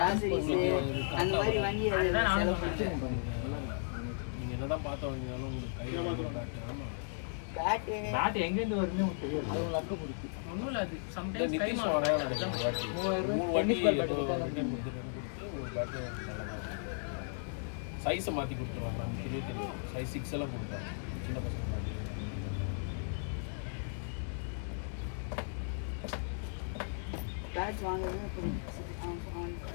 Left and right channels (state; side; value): silent; right; digital silence